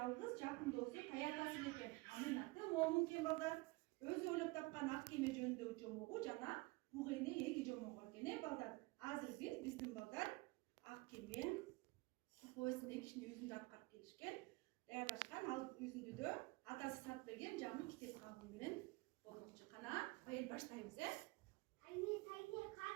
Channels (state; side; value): quieter; left; 24.0 dB